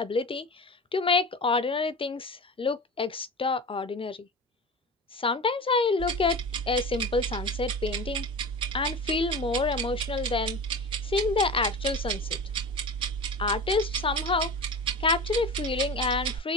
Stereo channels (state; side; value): normal; both; correlation 0.31